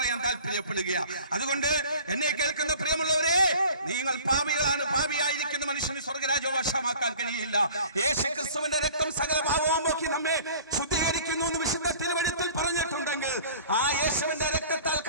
താല്പര്യപ്പെടുകയാണ്. അതുകൊണ്ട് എന്നെ കേൾക്കുന്ന പ്രിയമുള്ളവരെ, നിങ്ങൾ പാപികളാണ്. പാപിയായിരിക്കുന്ന മനുഷ്യന് സ്വർഗരാജ്യവശമാക്കാൻ കഴിയില്ല. യേശു ക്രിസ്തുവിന്റെ രക്തം സകല പാപവും പോക്കി നമ്മെ ശുദ്ധീകരിക്കുന്നു എന്ന് വിശുദ്ധ തിരുവെഴുത്തിൽ പറഞ്ഞിട്ടുണ്ടെങ്കിൽ ആ യേശുവിന്റെ രക്തത്താൽ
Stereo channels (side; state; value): both; inverted; correlation -0.46